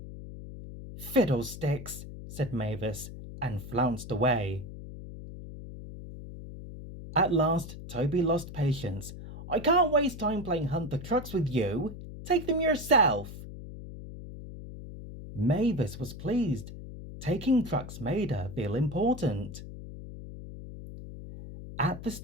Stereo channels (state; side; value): noise; left; hum, 12 dB below the sound